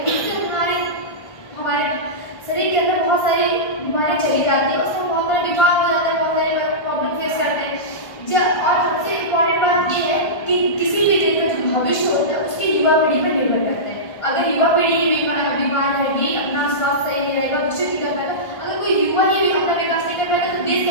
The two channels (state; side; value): late; right; 1.5 ms